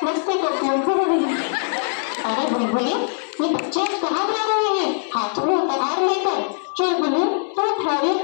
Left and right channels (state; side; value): silent; right; digital silence